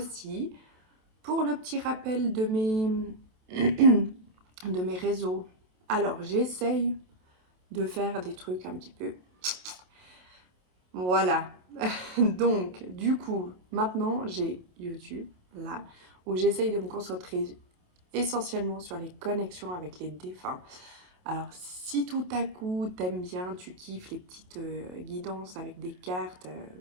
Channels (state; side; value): late; left; 28 ms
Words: Pour le petit rappel de mes réseaux, alors j'essaye de faire des trucs un petit peu. Voilà. Donc, du coup, maintenant j'ai YouTube, là, où j'essaye de me concentrer essentiellement sur les connexions avec les défunts. Alors, si tout à coup t'aimes bien, tu kiffes les petites guidances avec des cartes,